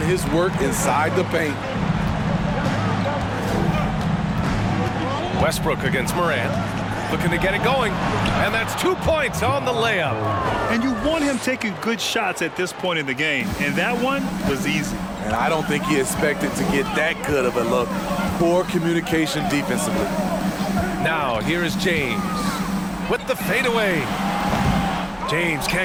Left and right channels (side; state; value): both; identical; correlation 1.00